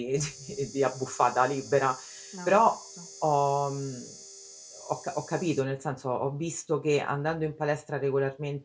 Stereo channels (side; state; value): both; identical; correlation 1.00